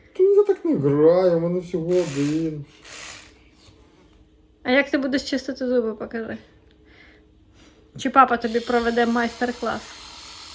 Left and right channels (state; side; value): identical; both; correlation 1.00